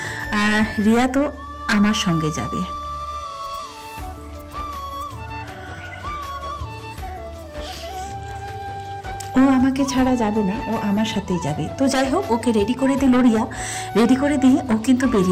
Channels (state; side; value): identical; both; correlation 1.00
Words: আর রিয়া তো আমার সঙ্গে যাবে। ও আমাকে ছাড়া যাবে না, ও আমার সাথেই যাবে। তো যাই হোক, ওকে রেডি করে দিল রিয়া, রেডি করে দিয়ে ও কিন্তু